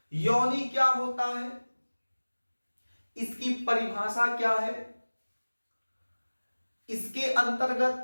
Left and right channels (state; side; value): inverted; both; correlation -1.00